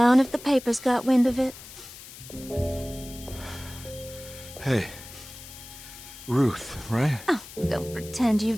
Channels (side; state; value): left; noise; hiss, 16 dB below the sound